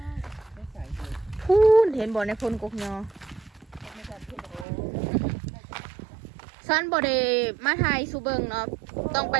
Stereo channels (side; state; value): left; drops out; at 4.7 s